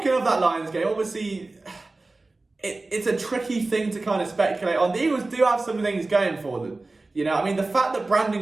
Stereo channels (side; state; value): left; quieter; 3.2 dB